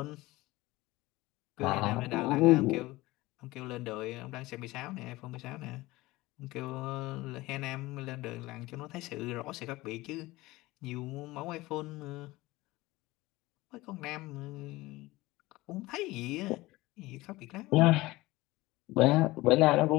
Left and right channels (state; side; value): quieter; right; 19.6 dB